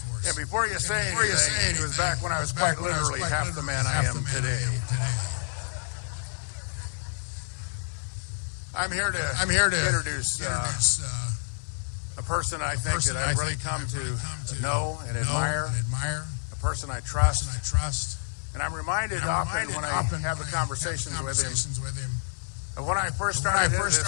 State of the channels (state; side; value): silent; right; digital silence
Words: And before you say anything, it was back when I was quite literally half the man I am today. I'm here to introduce a person I think that I've really come to know and admire, a person I trust. And I'm reminded often when I have the conversations with him of when I first started into